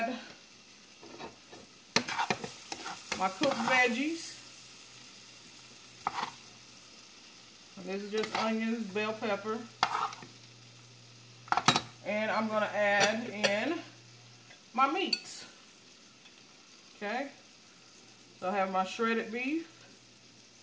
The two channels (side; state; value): both; identical; correlation 1.00